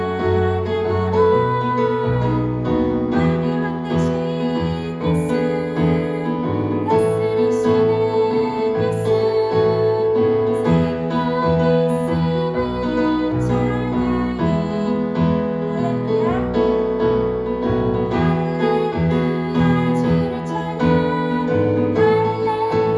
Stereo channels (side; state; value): both; identical; correlation 1.00